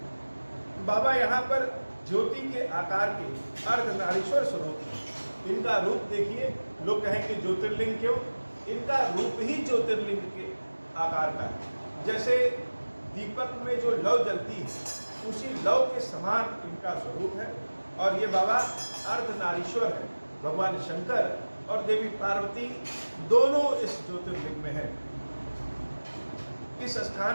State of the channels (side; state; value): both; inverted; correlation -1.00